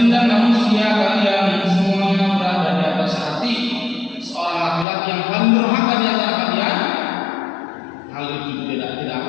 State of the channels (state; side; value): drops out; right; at 4.9 s